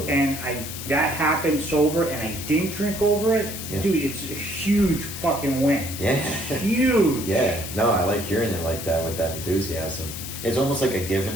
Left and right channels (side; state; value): left; noise; hiss, 9 dB below the sound